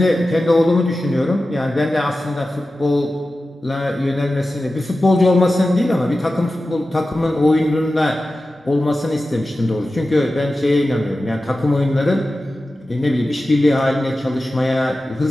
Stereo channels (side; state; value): both; normal; correlation 0.94